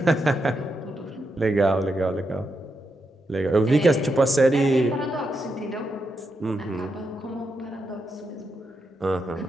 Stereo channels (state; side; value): normal; both; correlation 0.84